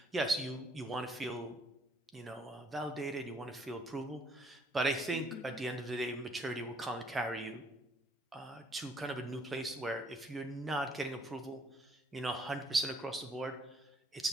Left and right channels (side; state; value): both; normal; correlation 0.64